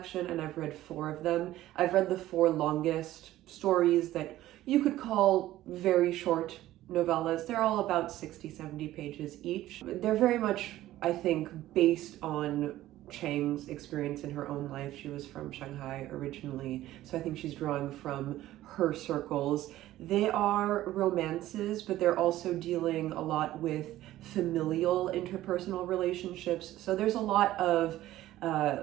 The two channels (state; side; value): quieter; left; 14.8 dB